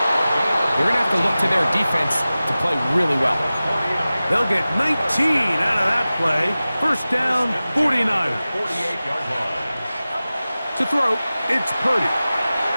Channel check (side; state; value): both; inverted; correlation -0.96